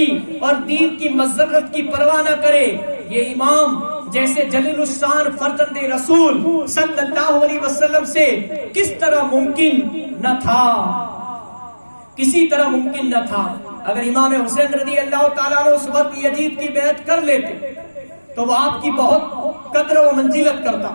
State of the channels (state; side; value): inverted; both; correlation -1.00